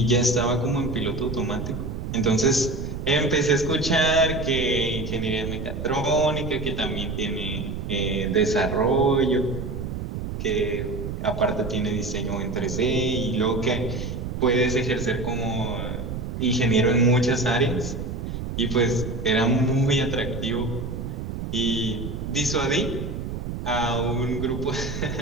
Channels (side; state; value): right; noise; rumble, 5 dB below the sound